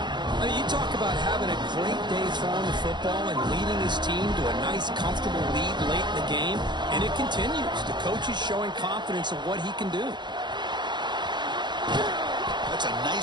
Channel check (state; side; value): late; left; 0.21 ms